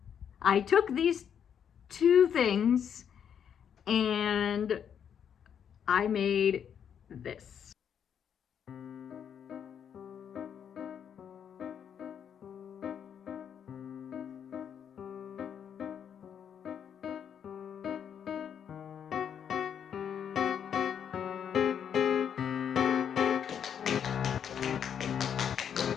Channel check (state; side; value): quieter; right; 8.3 dB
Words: I took these two things and I made this.